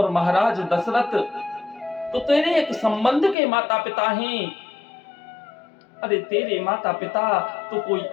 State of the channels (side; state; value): right; drops out; at 3.4 s